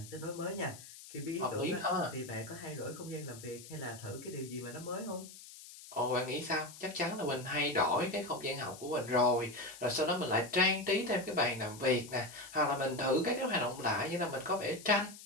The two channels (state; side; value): noise; left; hiss, 16 dB below the sound